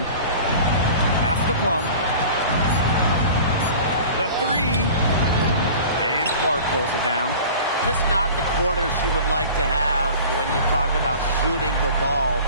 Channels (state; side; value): inverted; both; correlation -0.41